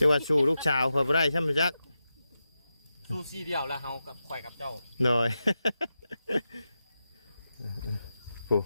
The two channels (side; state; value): both; inverted; correlation -0.90